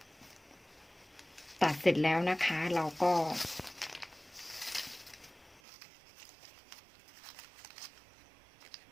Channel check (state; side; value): drops out; left; at 5.6 s